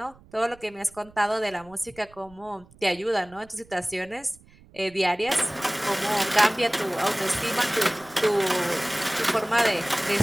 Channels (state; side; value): noise; right; rumble, 25 dB below the sound